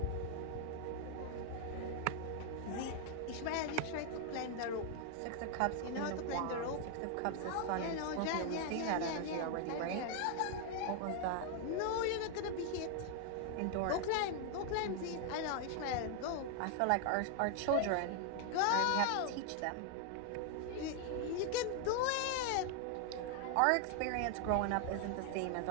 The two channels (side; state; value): both; different; correlation 0.00